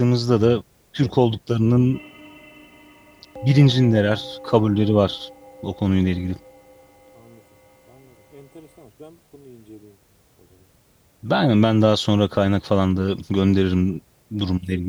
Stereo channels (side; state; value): both; identical; correlation 1.00